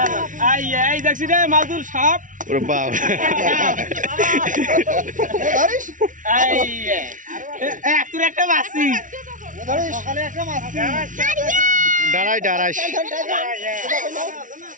এই দেখছি রে মাদুর সাপ ওরে বাপ তোর একটা মাছি সকালে একটা মাছ দাঁড়াই দাঁড়াই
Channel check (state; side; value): late; left; 0.38 ms